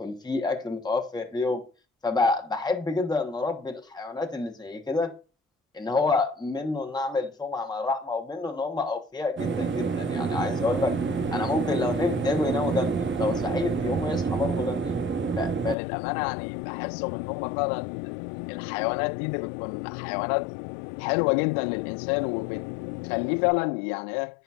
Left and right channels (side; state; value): right; drops out; at 15.8 s